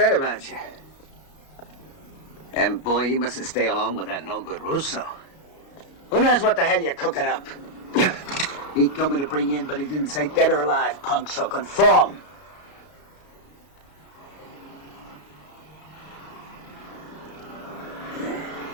about you. And boy, you mustn't stay alone with that no-good Russo. Who knows what the hell you're cooking up? He told me to bring you in, but he didn't say dead or alive, punk, so conform.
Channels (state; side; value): late; right; 32 ms